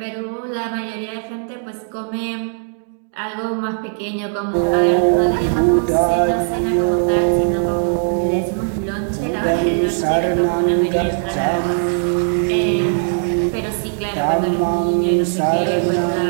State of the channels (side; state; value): left; silent; digital silence